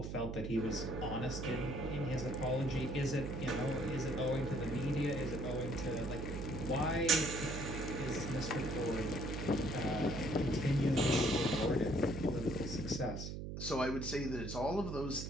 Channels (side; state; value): right; noise; hum, 6 dB below the sound